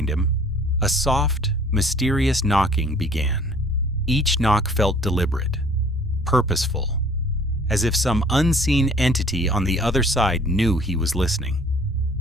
him, a soft, mysterious knocking began. Each knock felt deliberate, purposeful, as if some unseen entity on the other side knew he was listening.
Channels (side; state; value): both; normal; correlation 0.53